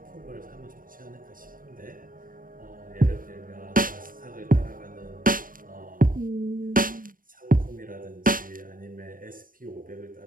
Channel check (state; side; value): late; left; 0.40 ms